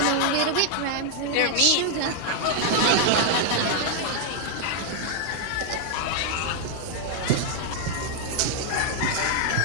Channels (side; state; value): both; different; correlation 0.00